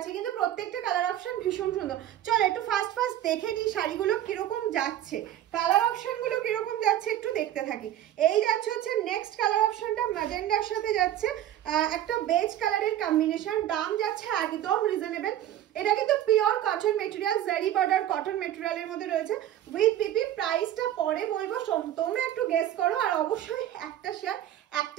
কিন্তু প্রত্যেকটা কালার অপশন ভীষণ সুন্দর। চলো একটু ফার্স্ট দেখে নিই শাড়িগুলো কিরকম যাচ্ছে, কালার অপশন গুলো কিরকম যাচ্ছে একটু দেখতে থাকি। এই যাচ্ছে হচ্ছে নেক্সট কালার অপশনটা ম্যাজেন্ডার সাথে যাচ্ছে, একটা বেজ কালারের কম্বিনেশন। দাম যাচ্ছে একদম রিজনেবল। এটা কিন্তু পিওর কটন মেটেরিয়াল, জারি বর্ডার কটন মেটেরিয়ালের মধ্যে রয়েছে উইথ পিপি। প্রাইসটা পরে বলবো, তোমরা একটু গেস করো, আর অবশ্যই একটা শেয়ার,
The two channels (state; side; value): quieter; left; 12.1 dB